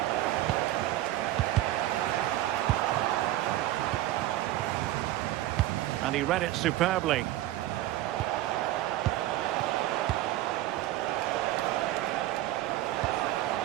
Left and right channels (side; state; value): left; quieter; 15.2 dB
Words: And he read it superbly.